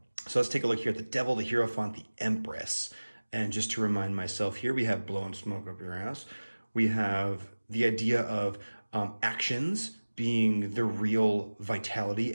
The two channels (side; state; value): both; inverted; correlation -1.00